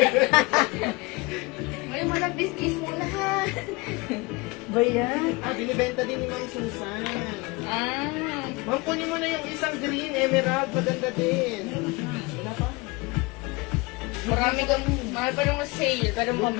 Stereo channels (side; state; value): right; quieter; 25.1 dB